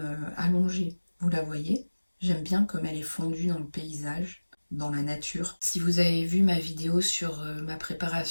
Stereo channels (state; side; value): inverted; both; correlation -1.00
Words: allongée, vous la voyez? J'aime bien comme elle est fondue dans le paysage, dans la nature. Si vous avez vu ma vidéo sur ma